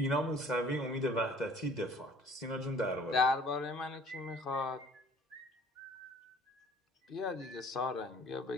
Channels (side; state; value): both; normal; correlation 0.53